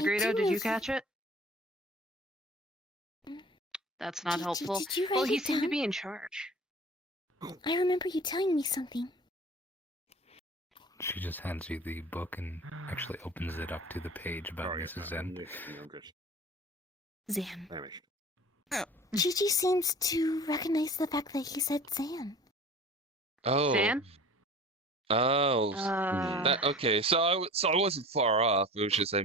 did you catch it? That's not helpful. Did you write Well, he it seemed to down? be in charge. I remember you telling me something. She just hands you the book and actually opens it up to the page about Mrs. Zen. Zan. Chi-Chi seems to recognize the fact that he said Zan. Oh. Zan? Oh. Okay. So I wasn't far off. It was just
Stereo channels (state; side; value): normal; both; correlation 0.42